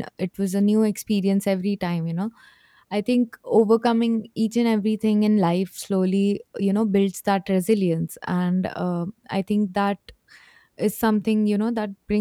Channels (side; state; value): both; identical; correlation 1.00